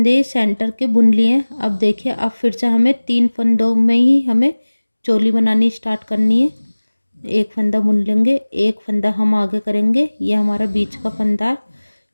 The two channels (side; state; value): both; inverted; correlation -1.00